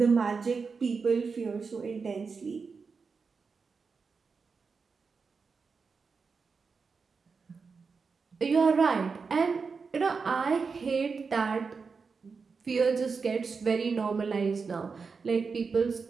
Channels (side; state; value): left; quieter; 5.0 dB